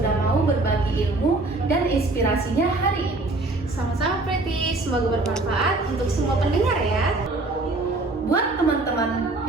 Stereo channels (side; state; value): left; quieter; 3.1 dB